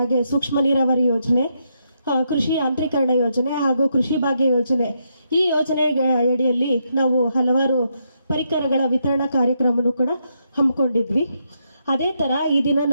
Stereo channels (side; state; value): both; inverted; correlation -0.79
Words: ಸೂಕ್ಷ್ಮ ನೀರಾವರಿ ಯೋಜನೆ, ಕೃಷಿ ಯಾಂತ್ರೀಕರಣ ಯೋಜನೆ ಹಾಗೂ ಕೃಷಿ ಭಾಗ್ಯ ಯೋಜನೆ, ಈ ಯೋಜನೆ ಅಡಿಯಲ್ಲಿ ನಾವು ಹಲವಾರು ಪರಿಕರಗಳ ವಿತರಣಾ ಕಾರ್ಯಕ್ರಮವನ್ನು ಕೂಡ ಹಮ್ಮಿಕೊಂಡಿದ್ವಿ. ಅದೇ ತರ ಈ ದಿನ